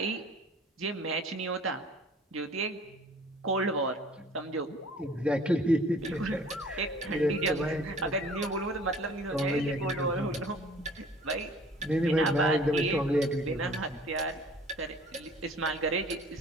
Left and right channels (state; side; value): normal; both; correlation 0.50